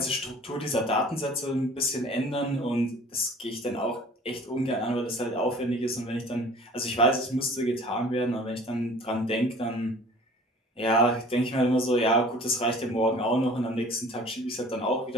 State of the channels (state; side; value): normal; both; correlation 0.47